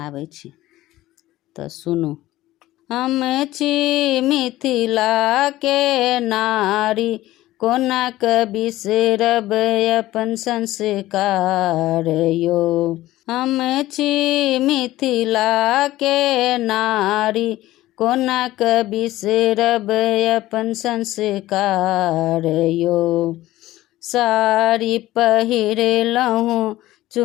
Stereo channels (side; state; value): right; quieter; 16.2 dB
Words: छी, तऽ सुनू। हम छी मिथिला के नारी, कोना के बिसरब अपन संस्कार यो। हम छी मिथिला के नारी, कोना के बिसरब अपन संस्कार यो। साड़ी पहिरलहुँ